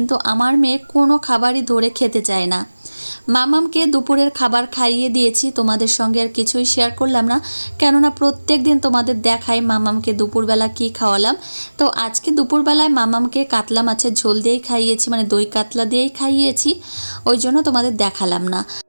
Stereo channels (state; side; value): inverted; both; correlation -1.00